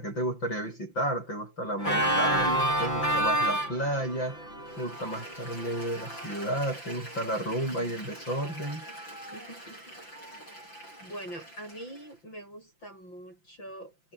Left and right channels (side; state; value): right; late; 5.9 ms